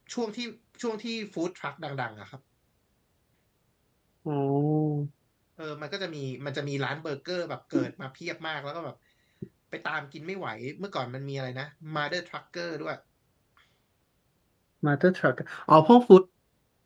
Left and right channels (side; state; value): both; identical; correlation 1.00